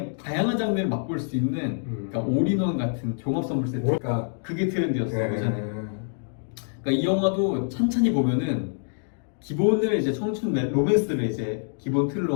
다양한 장르를 맛볼 수 있는 그러니까 올인원 같은 종합 선물 세트. 그게 트렌드였어요 예전에. 그러니까 이 영화도 찬찬히 보면은 기본을 이제 청춘 로맨스를 이제 기본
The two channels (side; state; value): right; silent; digital silence